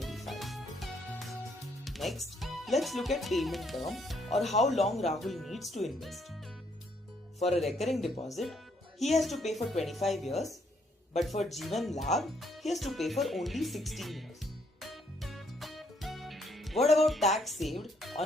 Next, let's look at payment term or how long Rahul needs to invest. For a recurring deposit, he has to pay for 25 years, but for Jeevan Labh, he has to pay for only 16 years. What about tax saved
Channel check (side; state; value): both; normal; correlation 0.70